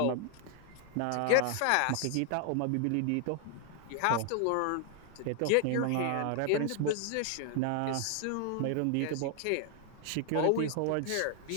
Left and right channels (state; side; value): different; both; correlation 0.00